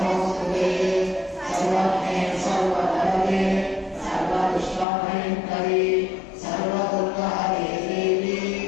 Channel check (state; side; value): drops out; right; at 4.9 s